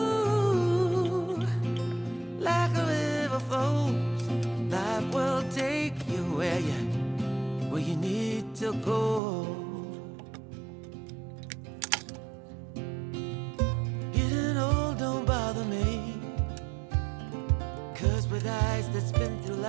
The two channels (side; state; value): left; drops out; at 9.2 s